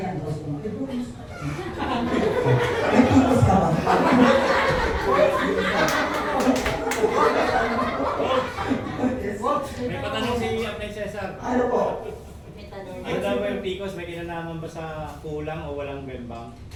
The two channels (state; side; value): identical; both; correlation 1.00